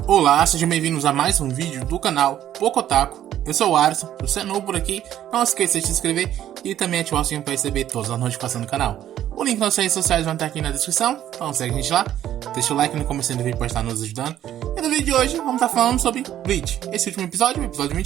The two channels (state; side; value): quieter; left; 11.6 dB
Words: Olá, sejam bem-vindos a mais um vídeo do canal Pocotaku. Eu sou o Alisson, se você é novo por aqui, não esqueça de se inscrever e também ativar o sininho para receber todas as notificações do canal. O link nas redes sociais vai estar aqui na descrição, então segue a gente lá, deixa o like no começo do vídeo para estar nos ajudando. E no vídeo de hoje vamos estar falando sobre Bleach, esse último episódio, o episódio